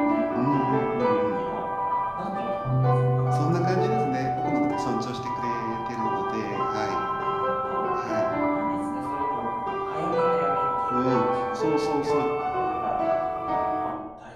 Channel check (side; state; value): left; noise; rumble, 28 dB below the sound